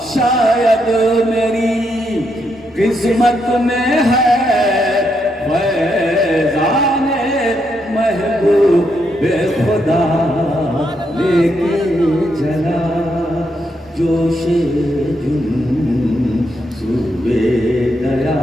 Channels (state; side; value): normal; both; correlation 0.79